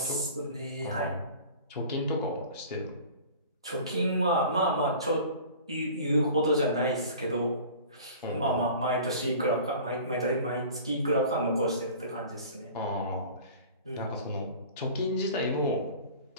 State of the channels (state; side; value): inverted; both; correlation -0.43